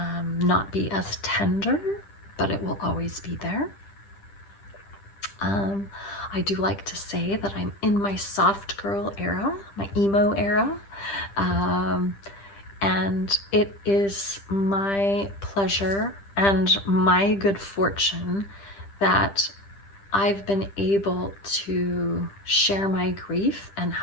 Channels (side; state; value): right; late; 10 ms